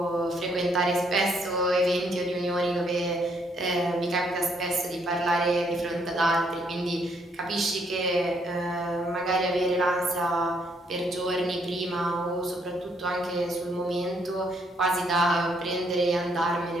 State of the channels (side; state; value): both; normal; correlation 0.70